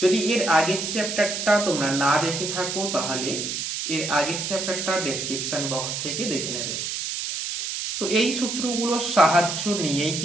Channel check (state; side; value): noise; right; hiss, 4 dB below the sound